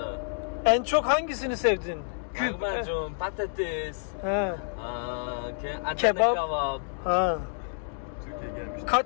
En çok hangisini sevdin? Lahmacun, patates, Ha. Adana Kebap. kebap. Ha. Türkiye gelmiş.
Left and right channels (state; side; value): silent; right; digital silence